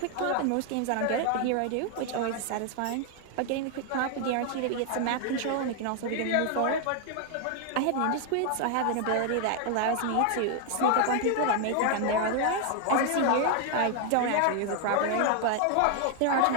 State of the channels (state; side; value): different; both; correlation 0.00